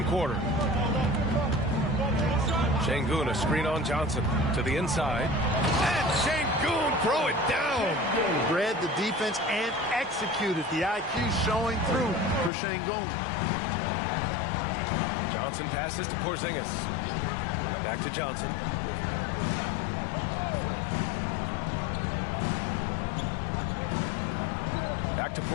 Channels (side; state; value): right; drops out; at 12.5 s